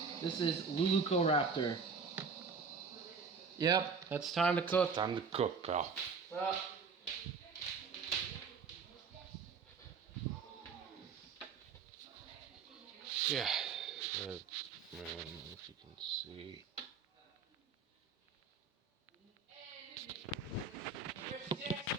This is Lulucoraptor. Yep, that's time to cook. Time to cook, pal. Well, Yeah. I don't know if you can see.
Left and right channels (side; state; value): left; quieter; 5.3 dB